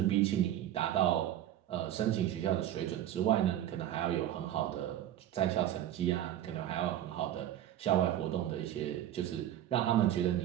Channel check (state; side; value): quieter; left; 12.1 dB